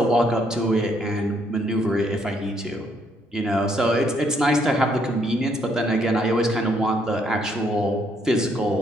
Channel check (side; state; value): both; normal; correlation 0.70